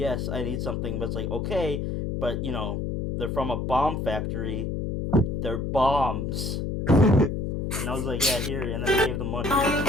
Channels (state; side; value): noise; left; hum, 2 dB below the sound